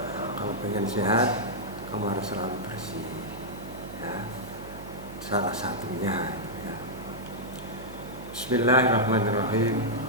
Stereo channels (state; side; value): noise; right; hum, 13 dB below the sound